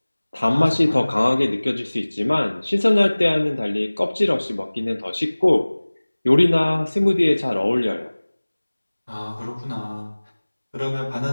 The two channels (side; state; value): both; inverted; correlation -1.00